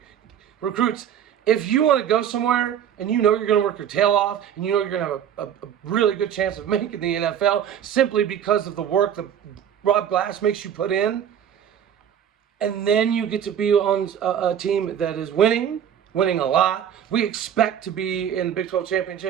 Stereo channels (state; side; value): quieter; left; 9.3 dB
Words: If you want to go somewhere and you know you're going to work your tail off and you know you're going to have a really good chance of making the NFL simply because of the work that Rob Glass makes you put in, and then you get to be on a team that is winning a lot. We expect to be in the Big 12